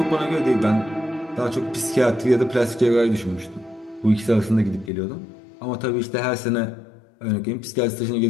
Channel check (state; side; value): drops out; right; at 4.9 s